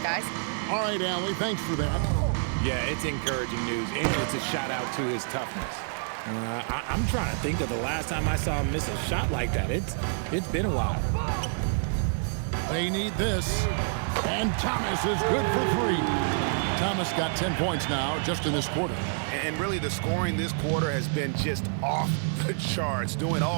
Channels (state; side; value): silent; left; digital silence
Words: Guys? All right, Allie, thanks for that. Yeah, it's encouraging news, and it's a shout out to his toughness. I'm trying to think of the last time I saw him miss a shot like that. It's been a while. They need this. And Thomas is good for 3. Thomas got 10 points now just in this quarter. And really the scoring this quarter has been just off the charts, doing